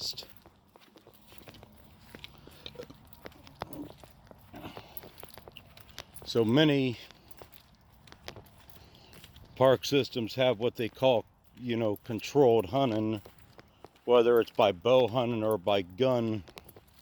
So many park systems have what they call, you know, controlled hunting, whether it's by bow hunting or by gun,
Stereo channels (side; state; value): both; identical; correlation 1.00